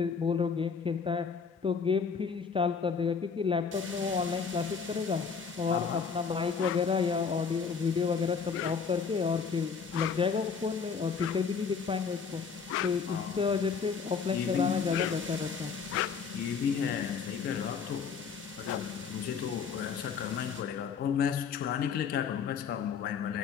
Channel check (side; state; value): right; quieter; 5.9 dB